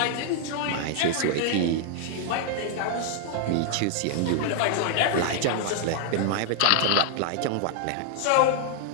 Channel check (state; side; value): different; both; correlation -0.01